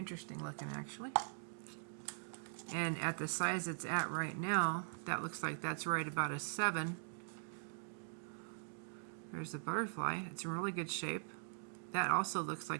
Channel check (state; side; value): silent; left; digital silence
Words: looking, actually. And at the size it's at right now, that looks like that's right about a 7. There's the butterfly. It's in really good shape. That also looks